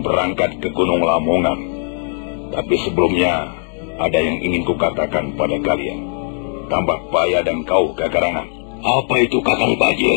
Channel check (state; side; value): silent; right; digital silence